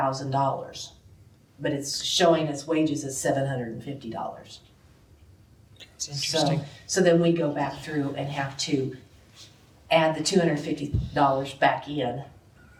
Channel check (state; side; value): identical; both; correlation 1.00